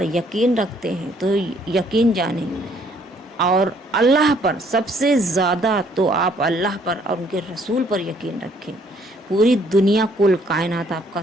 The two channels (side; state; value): both; normal; correlation 0.64